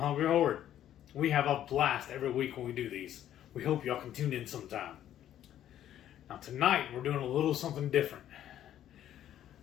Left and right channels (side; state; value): right; quieter; 11.4 dB